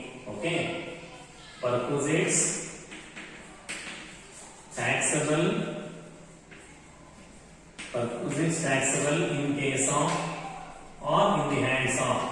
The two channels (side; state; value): both; identical; correlation 1.00